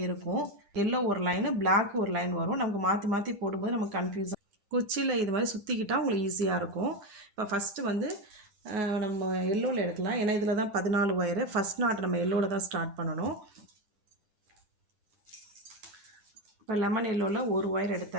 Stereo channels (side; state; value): left; late; 10 ms